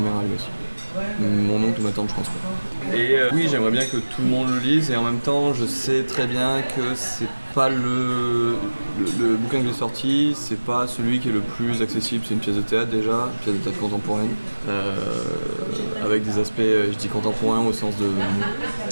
a lu aussi. Mon oncle ou ma tante, je pense pas. Et oui, j'aimerais bien que tout le monde le lise, et en même temps, je sais très bien que c'est pas le bouquin que j'ai sorti, c'est pas celui qui est le plus accessible. C'est une pièce de théâtre déjà, une pièce de théâtre contemporaine, avec des aspects, je dis contemporain au sens de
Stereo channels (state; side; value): inverted; both; correlation -1.00